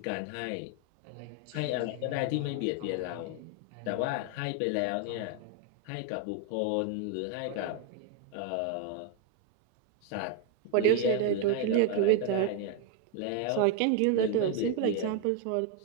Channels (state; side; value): different; both; correlation 0.00